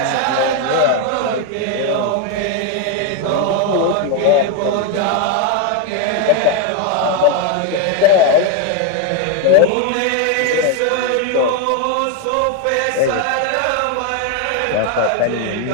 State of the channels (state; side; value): different; both; correlation 0.01